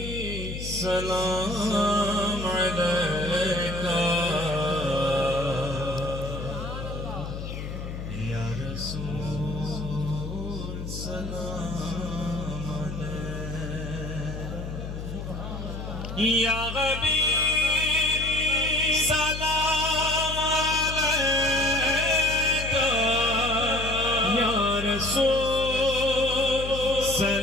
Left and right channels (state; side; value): noise; left; hum, 7 dB below the sound